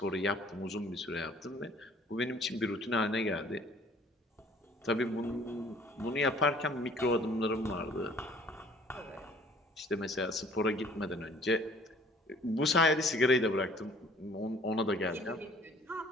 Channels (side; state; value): both; normal; correlation 0.55